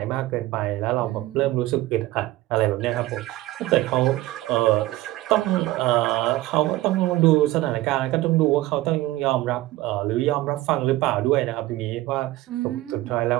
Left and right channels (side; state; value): left; quieter; 17.4 dB